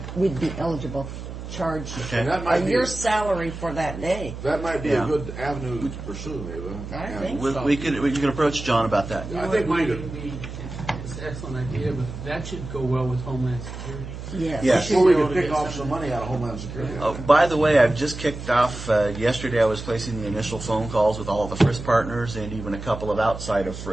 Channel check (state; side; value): noise; right; hum, 10 dB below the sound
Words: we'd be eligible to charge And that might be your salary for that day. That might be a good avenue to pursue, maybe. I think so. We can approach John about that. I think we might could. be, it's an excellent idea, but that should go well with Homeland Security. Yes. Yes. Well, we could pick off some money out of Homeland Security. By the way, I've just kicked off, yesterday I was placing the initial phone calls with all of the FRIS partners and even a couple of outside of